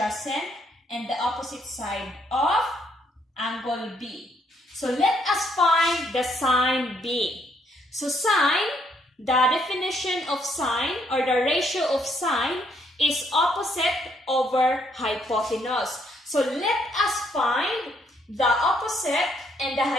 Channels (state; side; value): normal; both; correlation 0.71